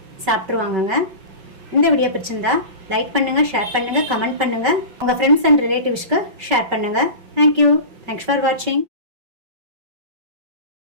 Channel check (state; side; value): late; left; 5.2 ms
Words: சாப்பிட்ருவாங்கங்க. இந்த வீடியோ பிடிச்சிருந்தா லைக் பண்ணுங்கள், ஷேர் பண்ணுங்கள், கமெண்ட் பண்ணுங்கள். உங்கள் ஃப்ரெண்ட்ஸ் அண்ட் ரிலேட்டிவ்ஸ்க்கு ஷேர் பண்ணுங்கள். தேங்க்யூ. தேங்க்ஸ் ஃபார் வாட்சிங்.